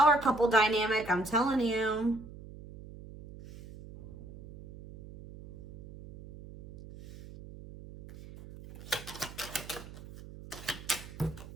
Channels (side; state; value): right; noise; hum, 16 dB below the sound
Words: couple dynamic. I'm telling you.